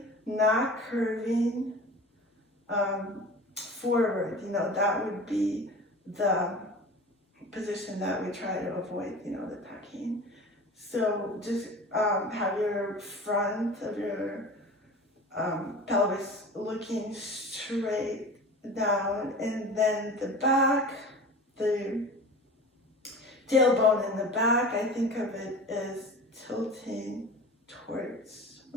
not curving forward. You know, that would be the position that we try to avoid, you know, the tucking. So just have your front of your pelvis looking straight down, and then the back, the tailbone in the back, I think of it as tilting towards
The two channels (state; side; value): normal; both; correlation 0.36